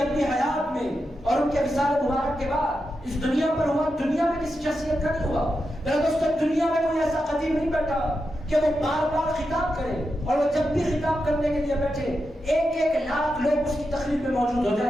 اپنی حیات میں اور ان کے وصال مبارک کے بعد اس دنیا پر ہوا، دنیا میں کسی شخصیت کا نہیں ہوا۔ میرے دوستو، دنیا میں کوئی ایسا قدیم نہیں بیٹھا کہ وہ بار بار خطاب کرے، اور وہ جب بھی خطاب کرنے کے لیے بیٹھے 1,00,000 لوگ اس کی تقریر میں موجود ہو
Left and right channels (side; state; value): both; normal; correlation 0.88